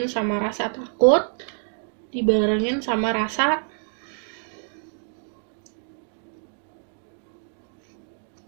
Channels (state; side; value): silent; left; digital silence